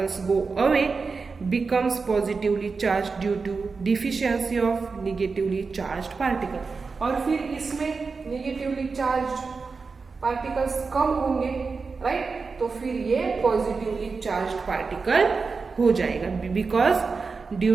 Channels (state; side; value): quieter; left; 4.6 dB